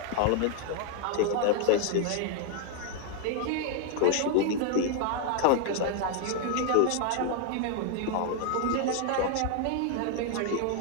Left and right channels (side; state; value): both; different; correlation 0.00